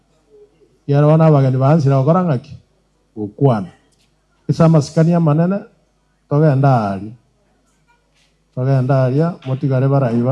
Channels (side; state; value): both; identical; correlation 1.00